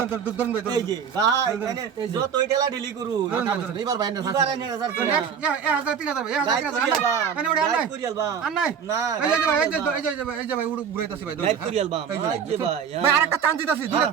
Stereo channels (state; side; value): quieter; left; 7.3 dB